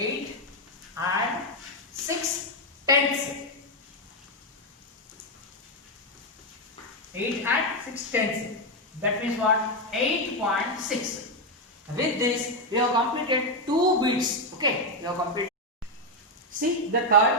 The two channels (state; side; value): normal; both; correlation 0.04